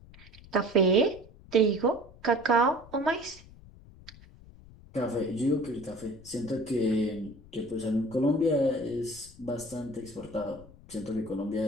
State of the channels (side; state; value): left; noise; rumble, 21 dB below the sound